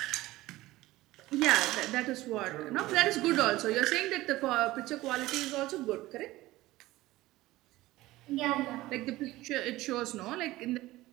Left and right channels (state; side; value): quieter; left; 17.8 dB